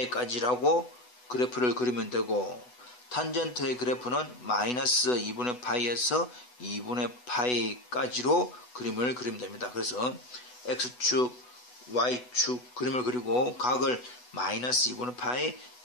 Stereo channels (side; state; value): right; late; 8.1 ms